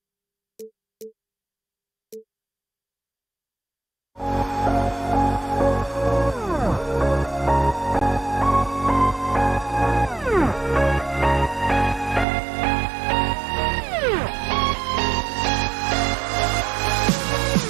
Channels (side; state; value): left; drops out; at 12.2 s